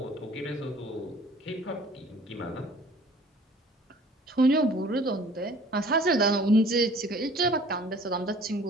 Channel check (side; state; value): both; normal; correlation 0.51